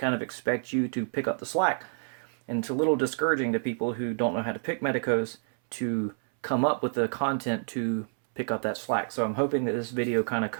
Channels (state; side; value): silent; left; 59 dB below the other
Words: of expect you to pick up the slack. And it's a little discouraging to people who don't know how to pick Medecos to come up with the content to pick up that slack. So I'm hoping that this video kind of